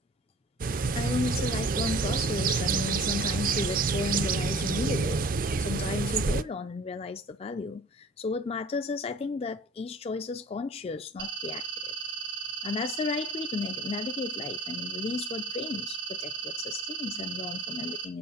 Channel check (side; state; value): both; normal; correlation 0.47